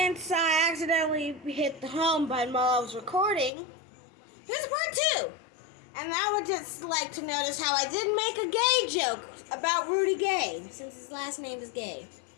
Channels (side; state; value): right; drops out; at 3.5 s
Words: I accidentally hit the home button while I was recording, here's part 2. And I would just like to notice how I didn't make a gay joke about Rudy Gay, since his last name is Gay.